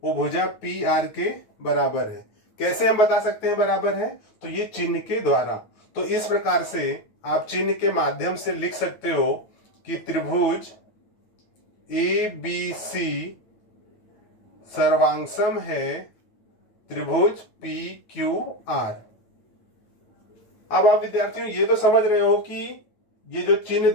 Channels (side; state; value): right; late; 9.5 ms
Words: वो भुजा PR के बराबर है। कैसे हम बता सकते हैं बराबर है, तो ये चिन्ह के द्वारा। तो इस प्रकार से आप चिन्ह के माध्यम से लिख सकते हो कि त्रिभुज ABC सर्वांगसम है त्रिभुज PQR। अब आप विद्यार्थियों ये तो समझ रहे हो कि ये जो चिन्ह